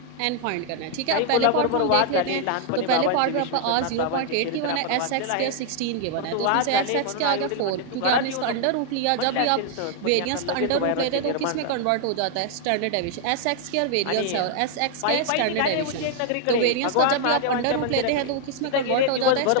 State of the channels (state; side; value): different; both; correlation 0.00